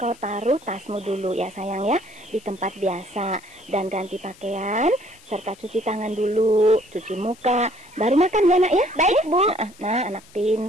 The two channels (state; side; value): noise; left; hiss, 25 dB below the sound